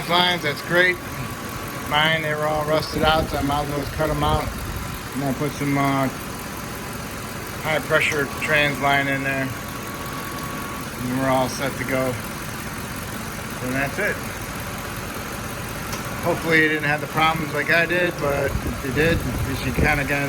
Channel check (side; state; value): both; identical; correlation 1.00